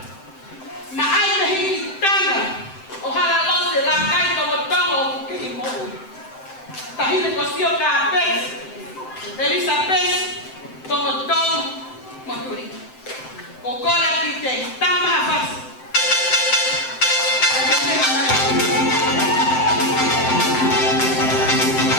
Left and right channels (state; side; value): late; right; 7.8 ms